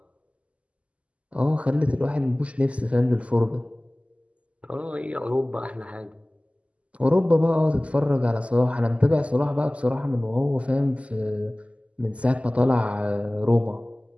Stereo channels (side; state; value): left; late; 0.061 ms